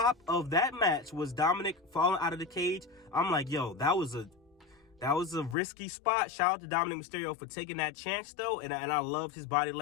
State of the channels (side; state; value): right; drops out; at 5.6 s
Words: of that match was Dominic falling out of the cage. I'm like, yo, that was a risky spot. Shout out to Dominic Mysterio for taking that chance, though. And I loved his body